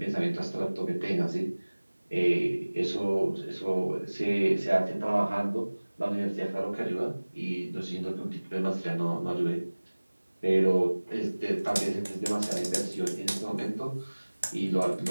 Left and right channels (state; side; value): inverted; both; correlation -1.00